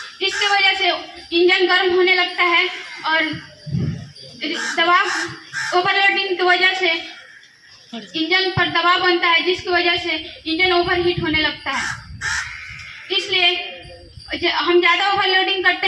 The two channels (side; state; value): both; identical; correlation 1.00